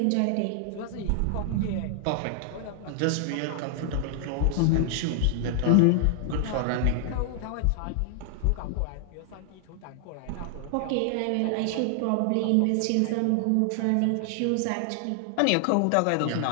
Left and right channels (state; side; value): different; both; correlation 0.00